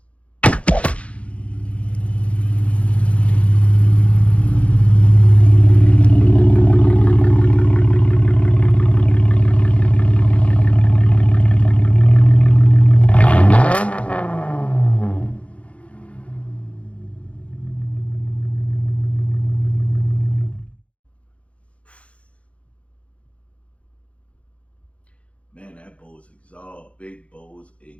man, that Bose exhaust, big Bose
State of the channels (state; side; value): late; right; 0.063 ms